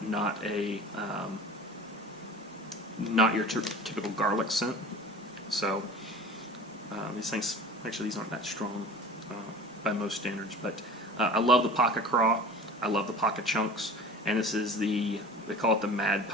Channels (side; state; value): both; normal; correlation 0.40